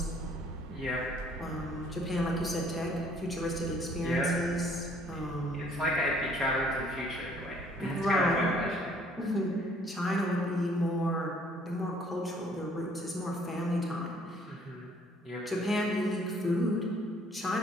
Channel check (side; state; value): both; normal; correlation 0.60